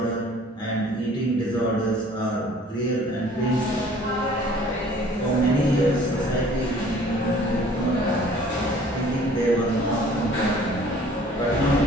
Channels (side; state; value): both; normal; correlation 0.52